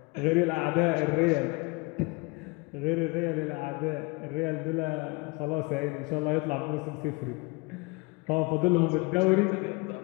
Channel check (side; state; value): right; quieter; 26.2 dB